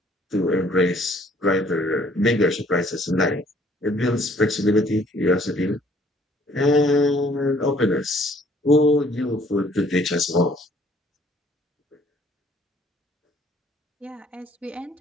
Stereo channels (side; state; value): both; normal; correlation 0.60